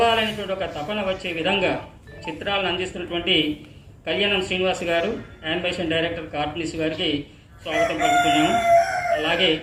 ఒక తపన వచ్చే విధంగా చిత్రాలను అందిస్తున్నటువంటి కళ్యాణం శ్రీనివాస్ గారు, యానిమేషన్ డైరెక్టర్ కార్టూనిస్ట్ గారికి స్వాగతం పలుకుతున్నాము. అలాగే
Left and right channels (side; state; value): both; identical; correlation 1.00